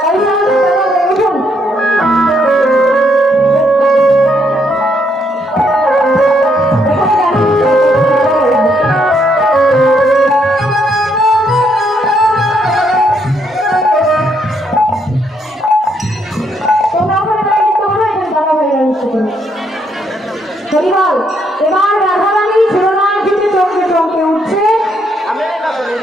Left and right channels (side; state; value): both; normal; correlation 0.73